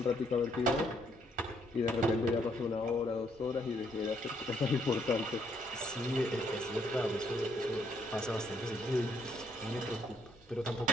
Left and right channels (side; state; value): both; normal; correlation 0.71